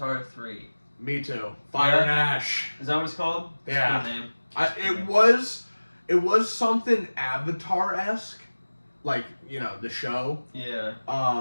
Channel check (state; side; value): inverted; both; correlation -1.00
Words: 3. Me too. Fire and Ash. Is that what it's called? It's a Yeah. good name. It was something Avatar-esque, like the show. Yeah.